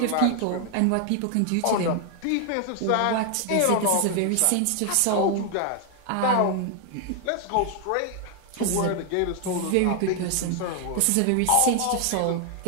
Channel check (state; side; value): different; both; correlation 0.00